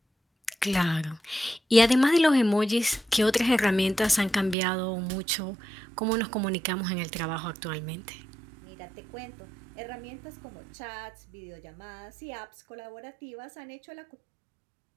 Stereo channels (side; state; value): left; drops out; at 4.5 s